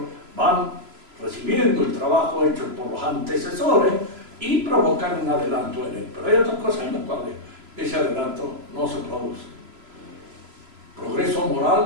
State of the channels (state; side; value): late; left; 3.0 ms